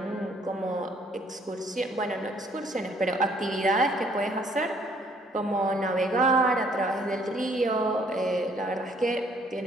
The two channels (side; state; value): both; normal; correlation 0.63